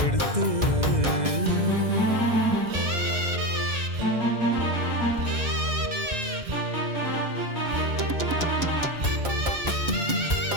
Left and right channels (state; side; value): late; left; 2.0 ms